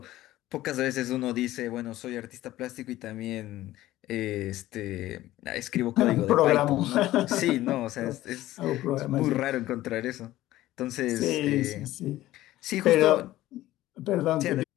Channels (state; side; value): quieter; right; 15.5 dB